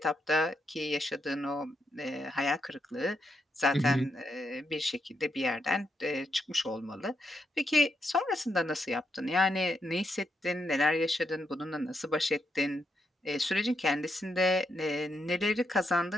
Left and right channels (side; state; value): both; normal; correlation 0.81